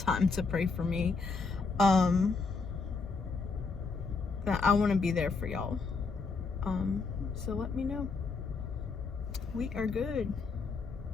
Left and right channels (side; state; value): right; quieter; 4.4 dB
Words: to pray for me. I want to be there for y'all. So let me know. We are good.